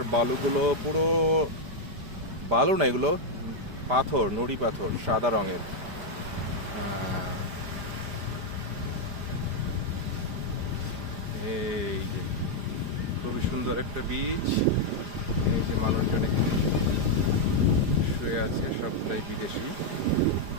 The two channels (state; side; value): late; left; 4.9 ms